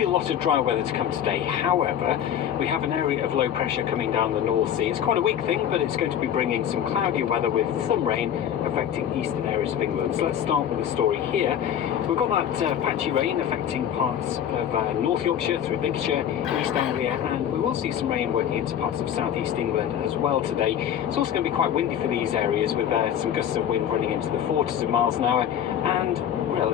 a lot of dry weather to come today. However, we have an area of low pressure coming down the North Sea. It's quite a weak thing, but it's going to be bringing some cloudy weather with some rain affecting eastern areas of England. So let's start with the story here. We've got that patchy rain affecting parts of North Yorkshire through Lincolnshire, East Anglia, and we will see some rain working into parts of South East England as well today. It's also going to be quite windy for these areas with some gusts of wind running into the 40s of miles an hour and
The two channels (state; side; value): quieter; right; 9.7 dB